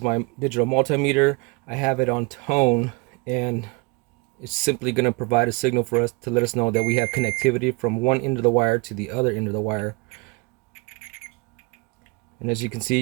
my digital multimeter. I have it on tone, and it's simply going to provide a signal for us to let us know that we have connectivity from one end of the wire to the other end of the wire. And as you can see,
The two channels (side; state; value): left; quieter; 28.6 dB